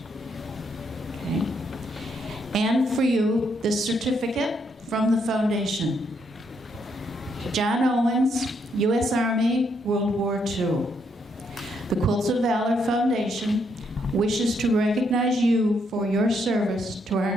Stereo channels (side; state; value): both; normal; correlation 0.75